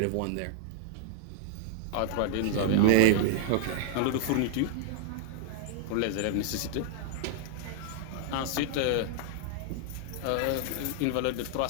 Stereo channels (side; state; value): both; different; correlation 0.00